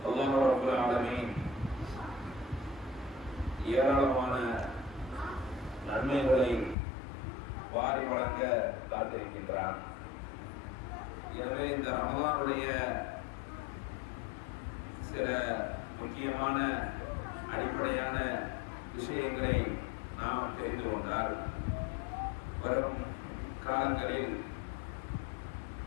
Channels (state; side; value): drops out; right; at 6.8 s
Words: அல்லாஹ் ரப்பல் ஆலமீன் ஏராளமான நன்மைகளை வாரி வழங்க காத்திருக்கின்றான். எனவே இந்த ரமலானுடைய சில முக்கியமான அடிப்படையான விஷயங்களை நாம் தெரிந்து கொண்டால் வரும் காலங்களில்